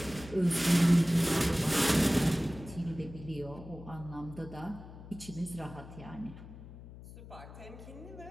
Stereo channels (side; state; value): left; noise; hum, 15 dB below the sound